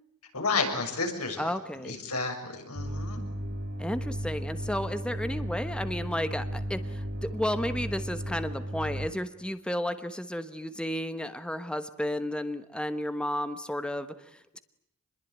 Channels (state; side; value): normal; both; correlation 0.67